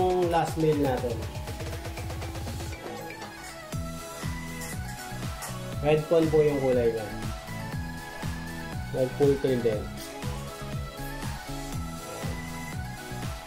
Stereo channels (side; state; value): both; identical; correlation 1.00